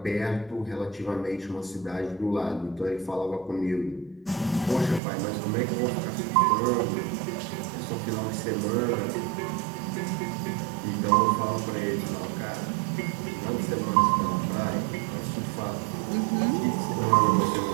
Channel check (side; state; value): left; drops out; at 5.0 s